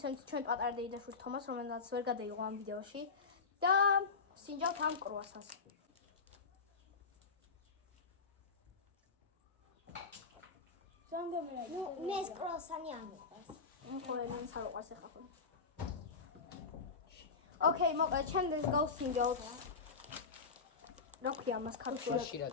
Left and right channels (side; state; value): right; quieter; 4.8 dB